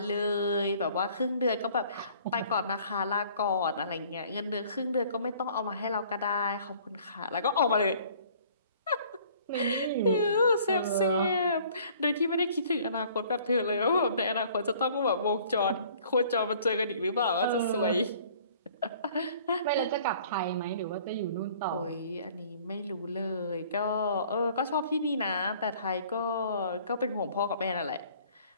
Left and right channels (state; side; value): inverted; both; correlation -0.54